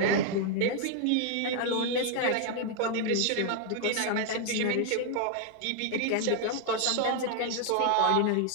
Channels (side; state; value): both; different; correlation 0.00